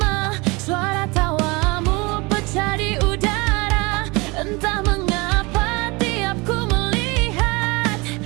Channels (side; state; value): left; quieter; 25.9 dB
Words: suara tawamu pecah di udara. Entah mengapa tiap ku melihat,